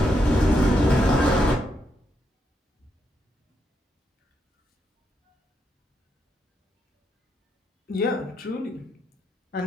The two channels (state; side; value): normal; both; correlation 0.81